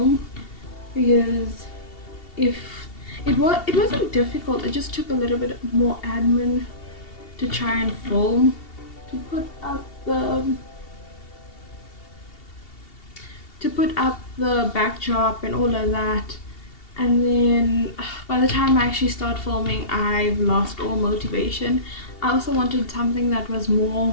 because if it wasn't difficult, it just took a little bit more admin to try and film, to put up the backdrop and all of that. And then by the time I actually start filming, I've lost all motivation. I also wanted something that was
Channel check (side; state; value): right; late; 2.7 ms